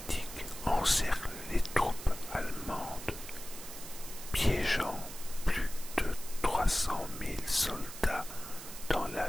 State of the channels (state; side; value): noise; right; hiss, 12 dB below the sound